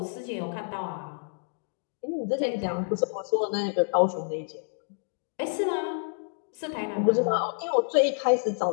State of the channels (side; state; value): right; silent; digital silence